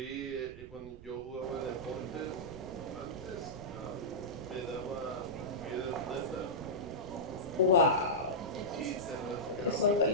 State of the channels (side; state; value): right; noise; rumble, 15 dB below the sound